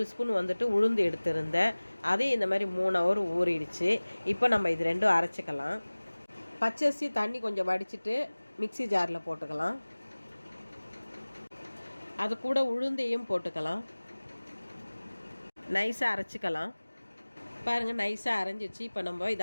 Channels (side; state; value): both; inverted; correlation -1.00